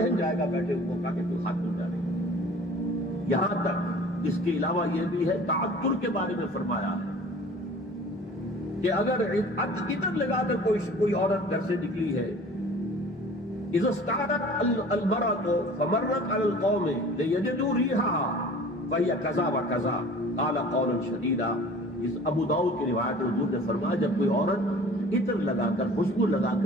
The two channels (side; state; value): both; normal; correlation 0.45